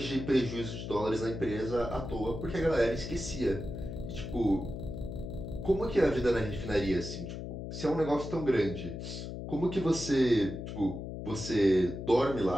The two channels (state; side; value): noise; left; hum, 7 dB below the sound